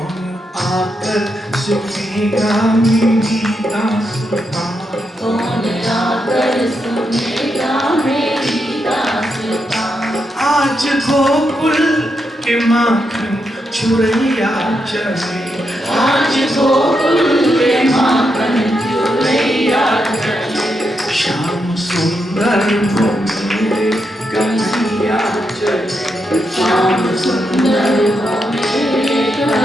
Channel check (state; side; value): normal; both; correlation 0.83